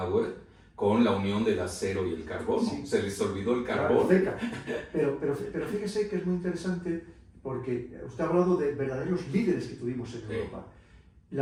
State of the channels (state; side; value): identical; both; correlation 1.00